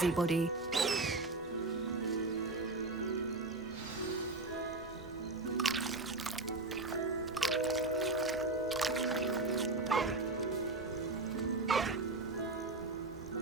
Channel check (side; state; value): left; quieter; 3.2 dB